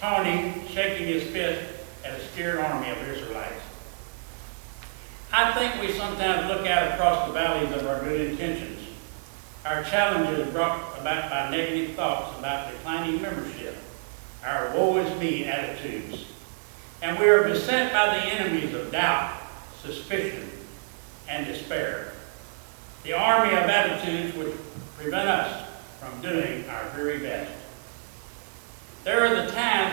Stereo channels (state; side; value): silent; left; 58 dB below the other